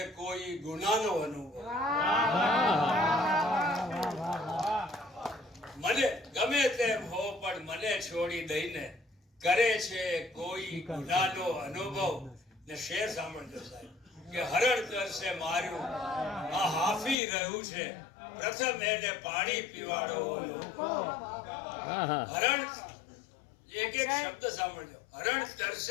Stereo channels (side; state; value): right; drops out; at 17.2 s